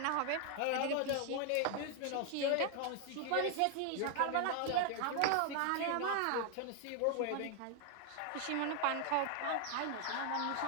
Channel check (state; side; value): different; both; correlation 0.00